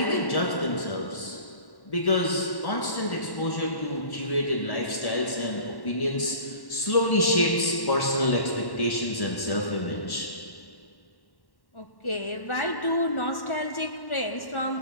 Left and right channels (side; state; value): right; late; 1.1 ms